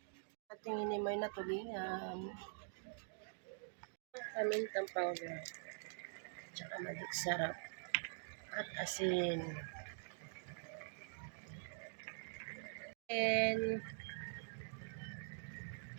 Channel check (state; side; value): silent; left; digital silence